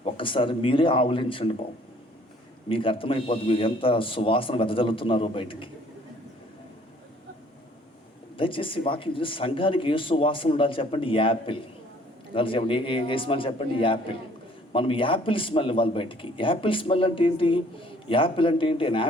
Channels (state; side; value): normal; both; correlation 0.58